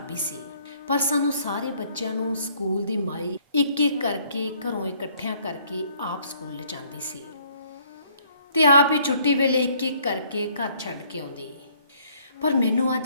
ਸੀ, ਪਰ ਸਾਨੂੰ ਸਾਰੇ ਬੱਚਿਆਂ ਨੂੰ ਸਕੂਲ ਦੀ ਮਾਈ ਇੱਕ ਇੱਕ ਕਰਕੇ ਘਰੋਂ ਇਕੱਠਿਆਂ ਕਰਕੇ ਆਪ ਸਕੂਲ ਲਿਜਾਂਦੀ ਸੀ ਤੇ ਆਪ ਹੀ ਛੁੱਟੀ ਵੇਲੇ ਇੱਕ ਇੱਕ ਕਰਕੇ ਘਰ ਛੱਡ ਕੇ ਆਉਂਦੀ। ਪਰ ਮੈਨੂੰ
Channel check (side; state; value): both; inverted; correlation -0.63